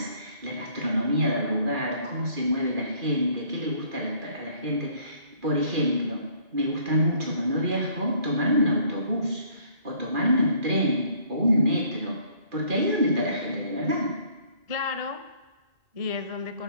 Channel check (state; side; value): late; left; 2.4 ms